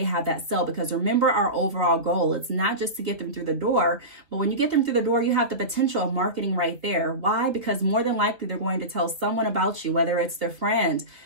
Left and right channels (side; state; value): left; late; 2.6 ms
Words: have that sale. Because remember our overall goal, it's not just to get them through the door, but when you get them through the door, you have the potential of marketing right there. Why? Because more than likely they're going to tell someone about you, whether it's their friend,